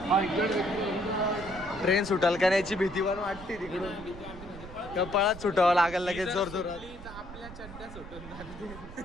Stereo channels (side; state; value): right; noise; rumble, 14 dB below the sound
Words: ट्रेन सुटाल का याची भीती पण वाटते तिकडून. कपाळात सुटावं लागेल लगेच जोर जोरात. आपल्या चड्ड्या सुटून जातील.